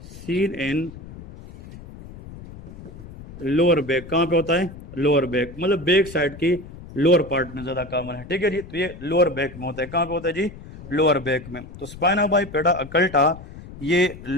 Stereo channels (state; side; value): noise; left; rumble, 16 dB below the sound